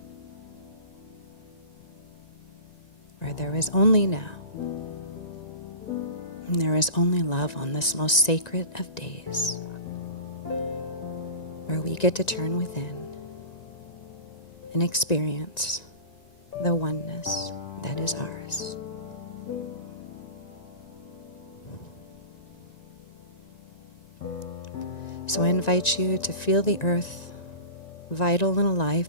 where there is only now, and there is only love on this most sacred of days, where we get to turn within and experience the oneness that is ours. So I invite you to feel the earth vital and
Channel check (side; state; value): right; late; 1.9 ms